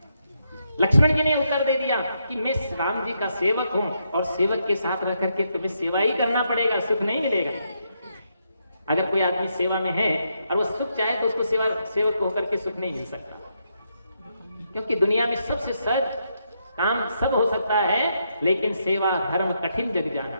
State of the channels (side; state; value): both; inverted; correlation -0.79